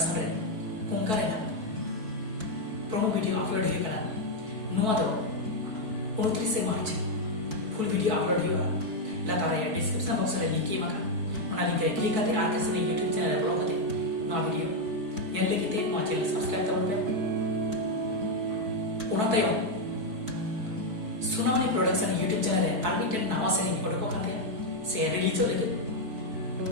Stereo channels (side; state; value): left; late; 4.6 ms